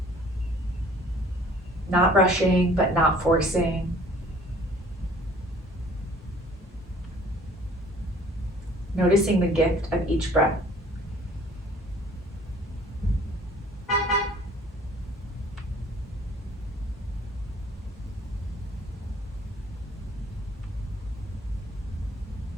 Not rushing, but not forcing. Noticing the gift of each breath.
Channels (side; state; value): both; normal; correlation 0.54